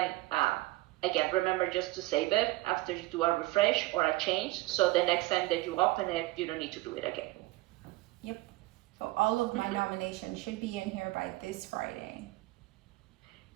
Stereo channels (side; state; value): left; quieter; 19.7 dB